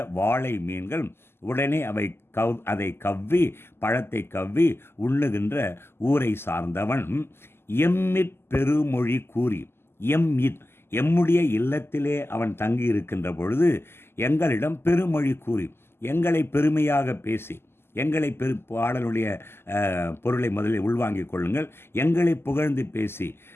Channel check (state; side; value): late; right; 0.12 ms